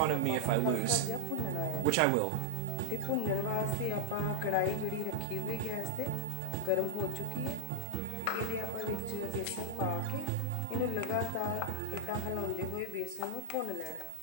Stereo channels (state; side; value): different; both; correlation -0.01